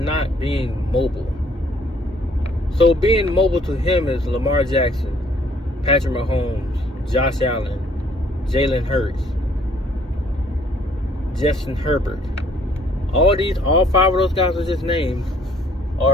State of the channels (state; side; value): normal; both; correlation 0.62